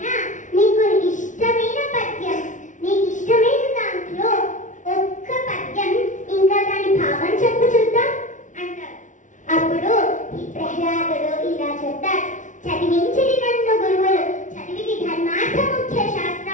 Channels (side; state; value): right; late; 0.37 ms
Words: నీకు ఇష్టమైన పద్యం, నీకు ఇష్టమైన దాంట్లో ఒక్క పద్యం ఇంకా దాని భావం చెప్పు చూద్దాం అంటారు. అప్పుడు ఈ ప్రహ్లాదుడు ఇలా చెప్తాడు, చదివించిది నన్ను గురువులు, చదివిది ధర్మార్థ ముఖ్య